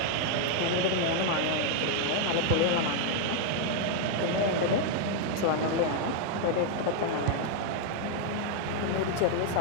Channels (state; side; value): different; both; correlation 0.00